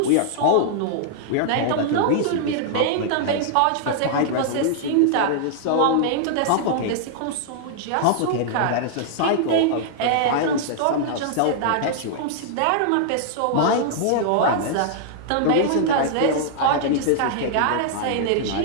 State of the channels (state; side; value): different; both; correlation -0.01